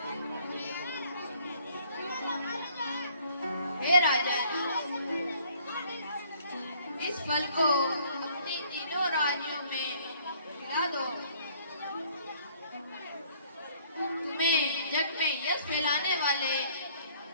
हे राजन, इस फल को अपने तीनों राज्यों में खिला दो। तुम्हें जग में यश फैलाने वाले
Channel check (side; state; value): both; inverted; correlation -0.60